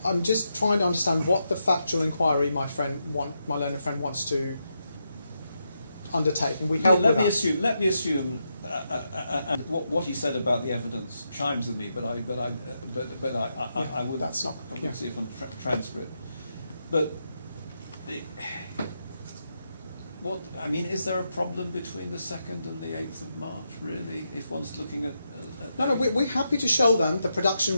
I'm just trying to understand what the factual inquiry my learned friend wants to undertake, and we help let with me that. assume, and what he said about the evidence chimes with me, but I would That's not. I would Yeah. see it on transcript. But is there a problem between the 2nd and the 8th of March, really, if one's looking at No, we're happy to show them the production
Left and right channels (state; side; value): inverted; both; correlation -0.84